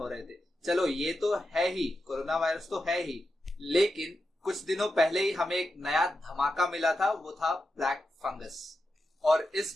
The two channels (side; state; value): both; normal; correlation 0.89